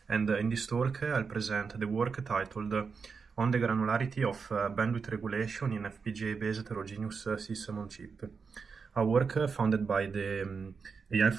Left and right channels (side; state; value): left; quieter; 5.3 dB